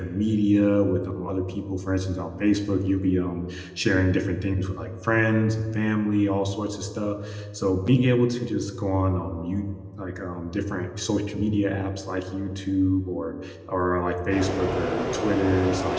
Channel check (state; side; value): identical; both; correlation 1.00